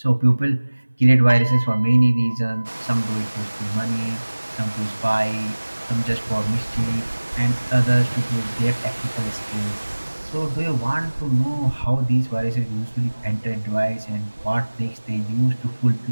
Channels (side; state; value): both; inverted; correlation -1.00